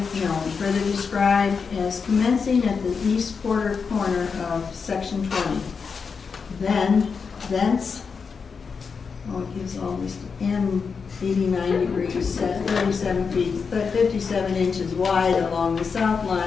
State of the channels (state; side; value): quieter; right; 5.5 dB